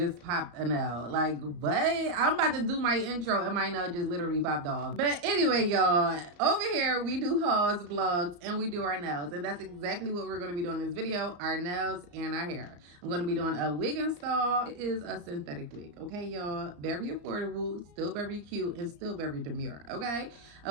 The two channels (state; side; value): late; left; 34 ms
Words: popped a nail. Like, what? I'm about to do my intro and my nail just literally popped off. But anyway, y'all, over here we do hauls, vlogs, and we do our nails. And that's exactly what we're going to be doing in this video, our nails and our hair. I'm going to be doing a wig install. It is a synthetic wig, okay, y'all? Very affordable, still very cute, and still very demure, okay?